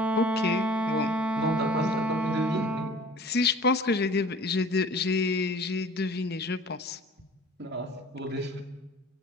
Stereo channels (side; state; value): both; normal; correlation 0.46